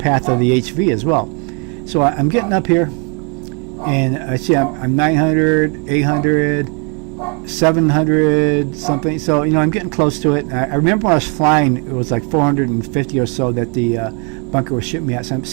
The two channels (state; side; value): quieter; left; 35.8 dB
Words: of the HV as well. So I'm getting up here, and I see I'm 900, 800, 700 something. So I'm getting close to it. I remember when I was flying, it was like 450 or so that the bunker was shooting me at. So I'm